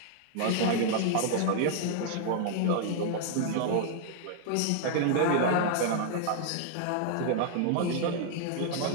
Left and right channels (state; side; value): different; both; correlation -0.01